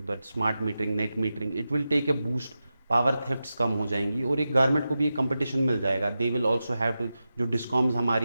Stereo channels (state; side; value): inverted; both; correlation -0.91